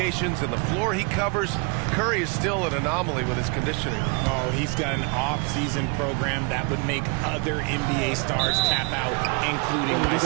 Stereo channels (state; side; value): quieter; left; 32.1 dB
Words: and the floor he covers, Curry is still an anomaly with his conditioning. Oh, he's got an off-season program that would make other NBA stars tap out, including